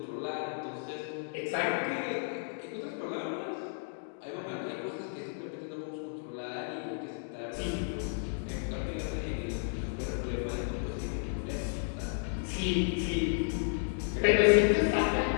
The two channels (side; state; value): right; silent; digital silence